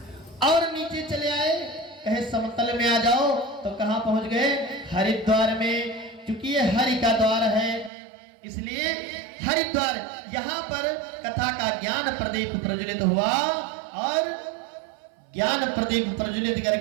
और नीचे चले आए, कहे समतल में आ जाओ तो कहां पहुंच गए? हरिद्वार में। चूंकि ये हरि का द्वार है इसलिए हरिद्वार, यहाँ पर कथा का ज्ञान प्रदीप प्रज्वलित हुआ, और ज्ञान प्रदीप प्रज्वलित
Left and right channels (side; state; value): left; drops out; at 7.9 s